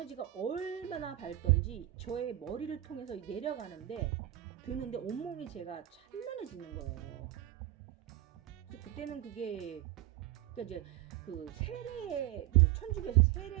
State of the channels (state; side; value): quieter; left; 14.4 dB